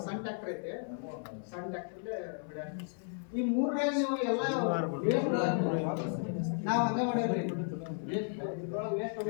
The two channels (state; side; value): silent; right; 55 dB below the other